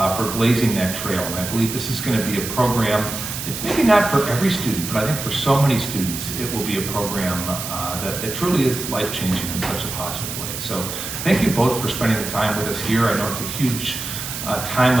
for blazing that trail. And I believe this is going to be a program, it's maybe not for every student, but I think for so many students, it will be a program that truly is life-changing in such a positive way. So thank you both for spending the time with us here. I know it's a huge time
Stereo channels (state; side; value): noise; right; hiss, 6 dB below the sound